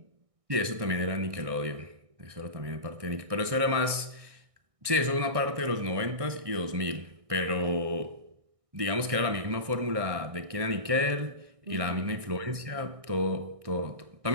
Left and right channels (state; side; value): late; left; 1.6 ms